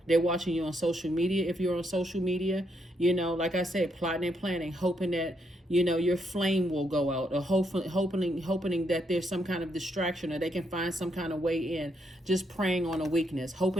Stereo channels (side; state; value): both; normal; correlation 0.77